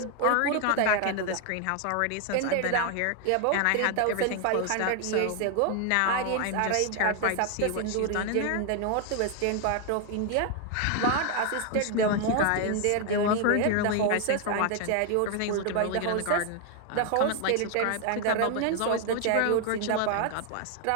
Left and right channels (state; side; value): different; both; correlation 0.00